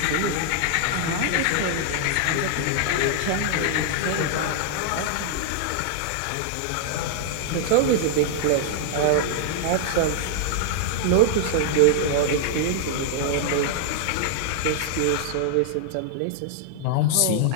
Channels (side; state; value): both; different; correlation -0.01